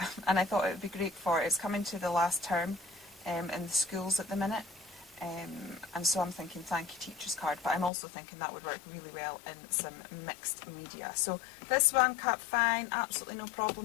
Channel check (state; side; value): drops out; right; at 7.9 s